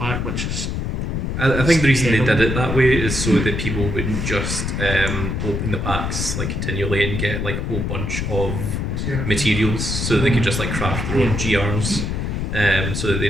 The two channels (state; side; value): noise; left; rumble, 2 dB below the sound